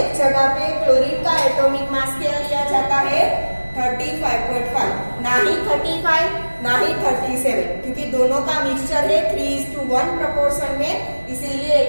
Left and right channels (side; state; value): both; inverted; correlation -1.00